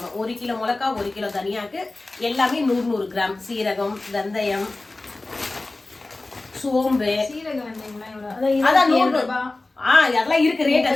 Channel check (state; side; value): quieter; right; 3.1 dB